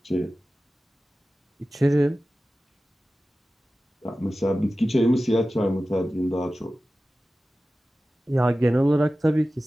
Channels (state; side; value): normal; both; correlation 0.95